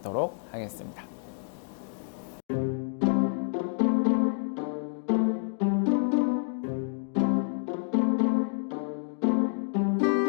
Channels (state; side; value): silent; right; digital silence